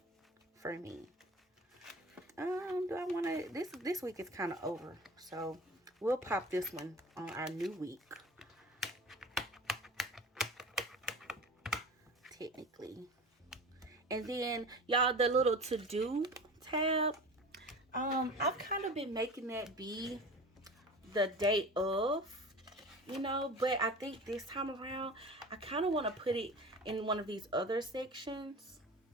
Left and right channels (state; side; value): normal; both; correlation 0.36